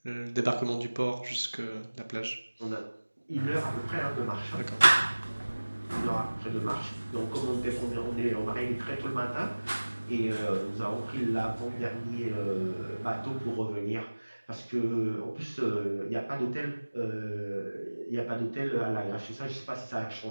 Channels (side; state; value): both; inverted; correlation -1.00